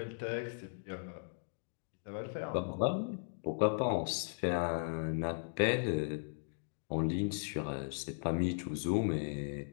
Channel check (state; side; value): silent; right; digital silence